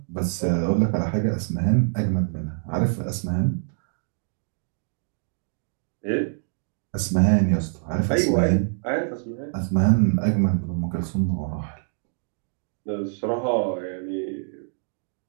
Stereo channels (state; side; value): silent; left; digital silence